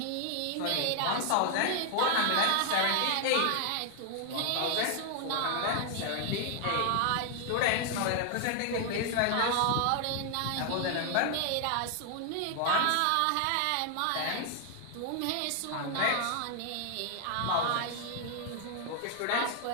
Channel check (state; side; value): different; both; correlation 0.00